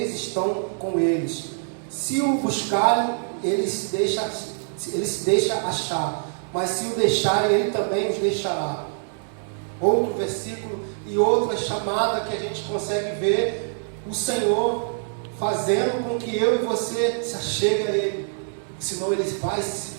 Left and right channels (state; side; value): silent; left; digital silence